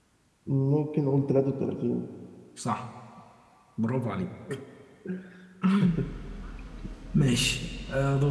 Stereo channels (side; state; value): both; identical; correlation 1.00